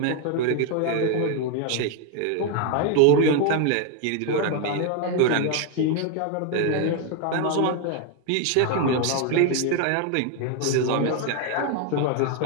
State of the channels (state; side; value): different; both; correlation 0.01